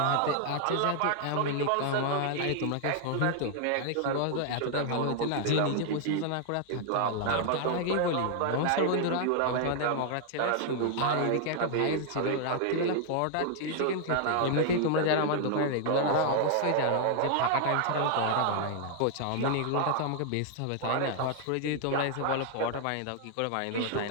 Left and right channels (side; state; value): both; different; correlation 0.00